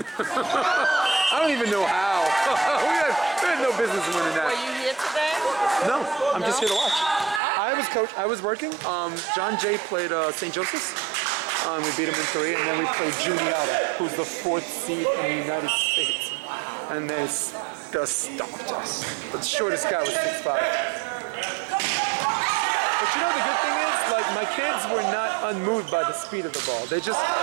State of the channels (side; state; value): left; drops out; at 7.4 s